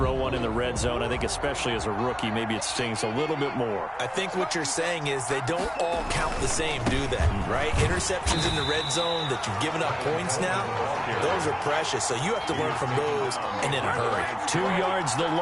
one in the red zone, I think especially as a rookie, maybe it stings a little bit more. I think what you're saying is they don't all count the same, do they? Right? Interceptions in the red zone that you've given up points now, those are precious. So you have to learn from those and in a hurry. 2 yards the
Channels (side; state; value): both; identical; correlation 1.00